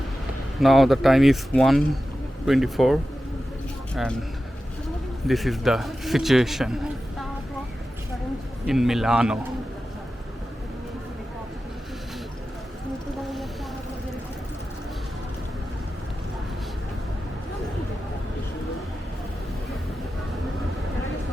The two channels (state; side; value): normal; both; correlation 0.93